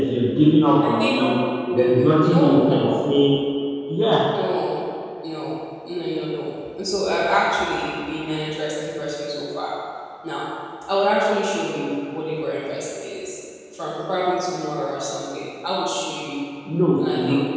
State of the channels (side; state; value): both; identical; correlation 1.00